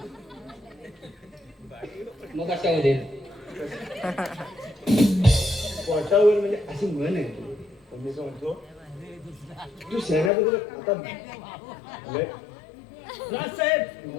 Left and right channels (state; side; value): drops out; right; at 10.3 s